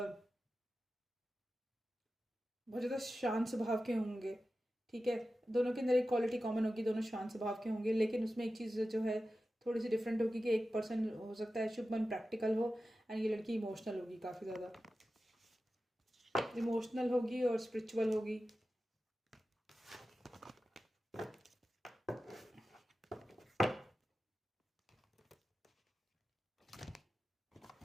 बहुत ज़्यादा शांत स्वभाव के होंगे, ठीक है। दोनों के अंदर एक क्वालिटी कॉमन होगी, दोनों शांत स्वभाव के होंगे, लेकिन उसमें एक चीज़ जो है थोड़ी सी डिफरेंट होगी कि एक पर्सन हो सकता है शुभमन प्रैक्टिकल हो एंड ये लड़की इमोशनल होगी, काफ़ी ज़्यादा इमोशनल होगी और स्पिरिचुअल होगी।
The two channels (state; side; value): normal; both; correlation 0.93